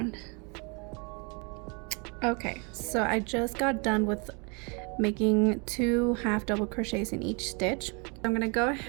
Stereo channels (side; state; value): left; quieter; 33.0 dB